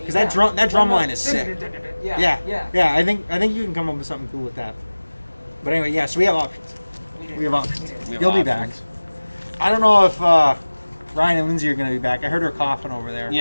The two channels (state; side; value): inverted; both; correlation -1.00